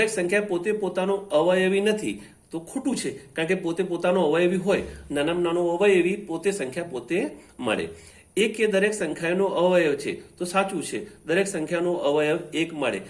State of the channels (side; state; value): both; identical; correlation 1.00